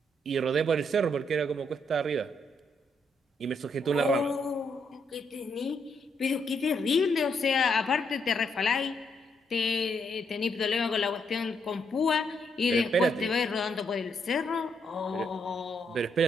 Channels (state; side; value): normal; both; correlation 0.76